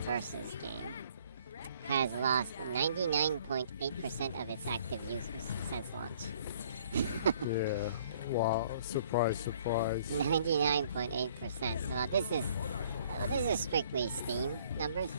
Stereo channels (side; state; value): both; inverted; correlation -0.59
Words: game has lost 99.8% of its active users since launch. Yeah. Wow. Surprise, surprise. 99.8%. Well, this is strictly Steam numbers.